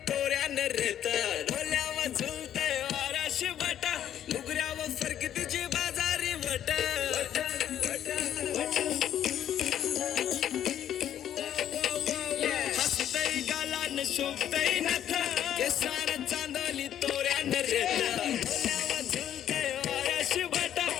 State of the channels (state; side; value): quieter; right; 10.5 dB